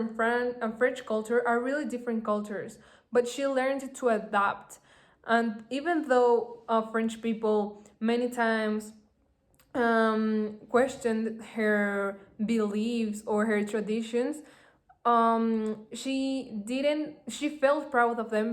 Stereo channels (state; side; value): identical; both; correlation 1.00